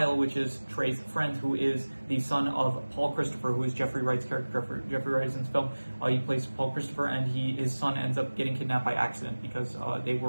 which is Trey's friend, who is the son of Paul Christopher, who is Jeffrey Wright's character. Jeffrey Wright is in this film. He plays Paul Christopher, and his son ends up getting kidnapped by accident because they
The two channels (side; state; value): both; inverted; correlation -1.00